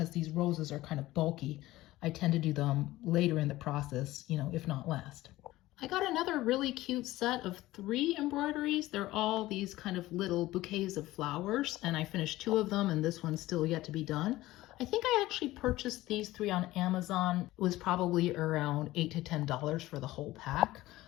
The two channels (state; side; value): quieter; right; 17.1 dB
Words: these roses are kind of bulky, I tend to do them later in the process, you know, if not last. I got another really cute set of 3 embroideries. They're all these kind of little bouquets of flowers, and I finished 2 of them, and this one's still yet to be done. I think I actually purchased these 3 on Amazon. It was probably around $8 to $10 for the whole pack.